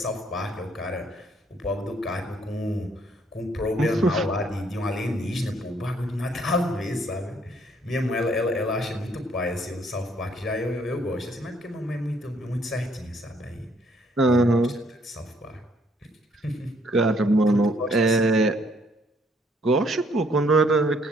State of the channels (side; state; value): both; normal; correlation 0.66